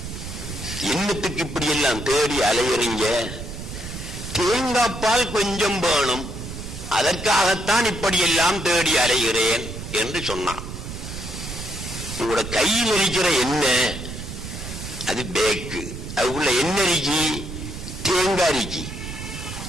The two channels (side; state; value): right; noise; rumble, 9 dB below the sound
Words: என்னத்துக்கு இப்படி எல்லாம் தேடி அலையறீங்க? தேங்காய் பால் கொஞ்சம் வேணும், அதற்காகத்தான் இப்படி எல்லாம் தேடி அலைகிறேன் என்று சொன்னான். உங்களோட கையில் இருக்கிற எண்ணெய் அது பேக்கு, அதுக்குள்ள என்ன இருக்கி? தேங்காய் இருக்கி.